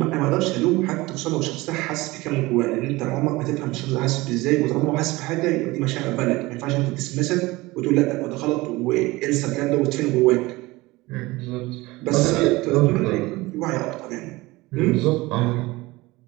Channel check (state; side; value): quieter; left; 20.9 dB